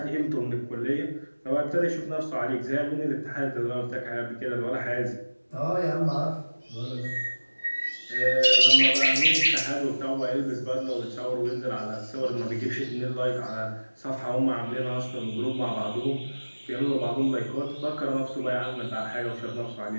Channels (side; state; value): both; inverted; correlation -1.00